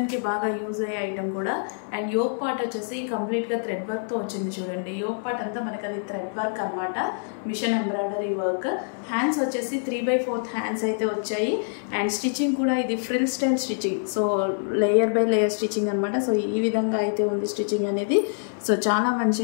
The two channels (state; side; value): silent; right; 61 dB below the other